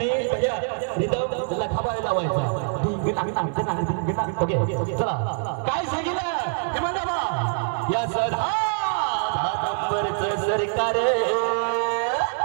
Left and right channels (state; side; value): silent; left; 62 dB below the other